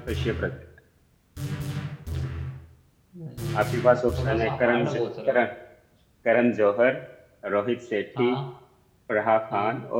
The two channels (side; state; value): both; identical; correlation 1.00